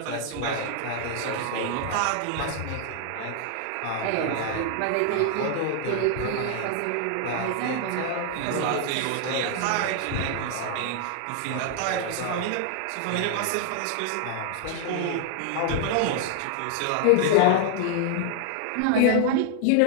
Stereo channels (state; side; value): different; both; correlation 0.00